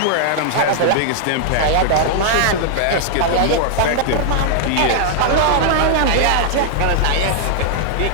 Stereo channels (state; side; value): different; both; correlation -0.01